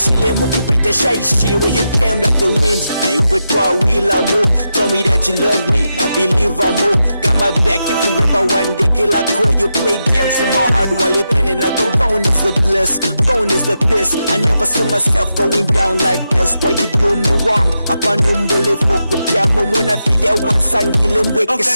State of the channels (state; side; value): inverted; both; correlation -0.87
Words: mukupita shy where you came like the wind. I put to a wheel I move. Told me that you love me, I believe I move. Got my back if you ever one day till I call you play games in my heart while you penning. I go gone is the bliss, gone is the piss. I never saw myself going down like this. Why you do me wrong? Upon umbole fokupiamo muna filia wansangile mweke